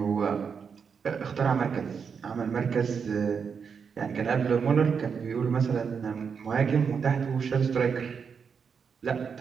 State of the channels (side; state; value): left; quieter; 6.3 dB